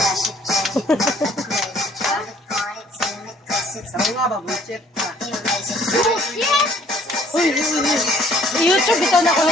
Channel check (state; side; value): normal; both; correlation 0.59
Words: YouTube ito na ko